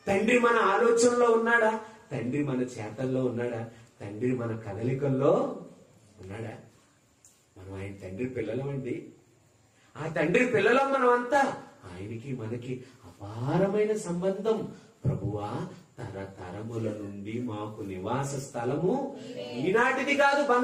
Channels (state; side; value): identical; both; correlation 1.00